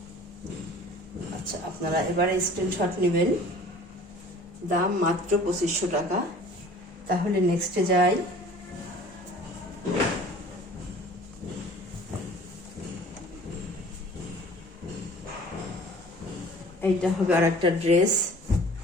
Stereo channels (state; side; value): normal; both; correlation 0.47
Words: আচ্ছা, আপনারা এবারে স্ক্রিনশট নেবেন, দাম মাত্র 2500 টাকা। তাহলে নেক্সটে যাই। এইটা হবে আর একটা ড্রেস,